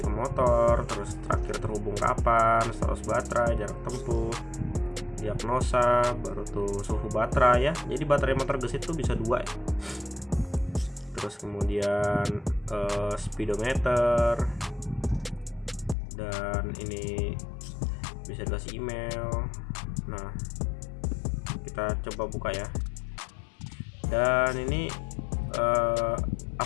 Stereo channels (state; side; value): drops out; right; at 16.0 s